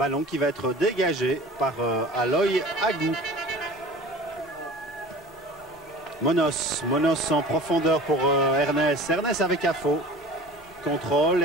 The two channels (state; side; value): normal; both; correlation 0.40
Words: qui va être dégagé par Aloy Agou. Monos en profondeur pour Ernest. Ernest avec Afo. Contrôle,